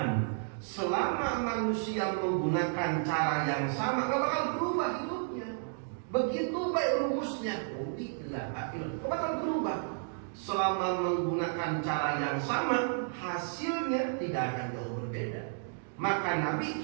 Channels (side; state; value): left; silent; digital silence